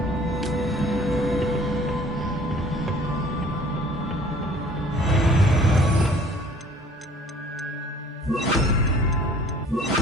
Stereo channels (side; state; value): both; normal; correlation 0.52